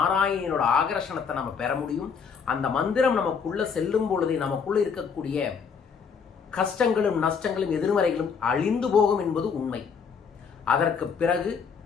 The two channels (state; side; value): quieter; right; 6.2 dB